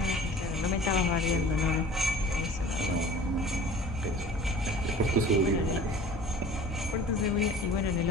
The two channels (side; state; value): both; normal; correlation 0.44